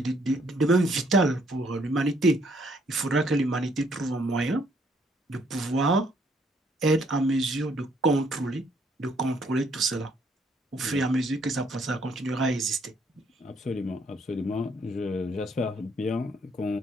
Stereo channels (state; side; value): normal; both; correlation 0.67